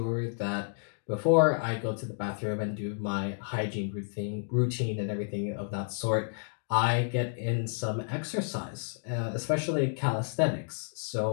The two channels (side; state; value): right; silent; digital silence